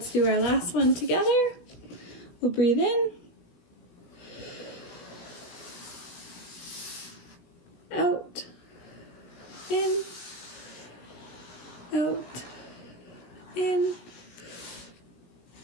do our last one together. We'll breathe in. Out. In. Out. In.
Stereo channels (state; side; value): late; right; 17 ms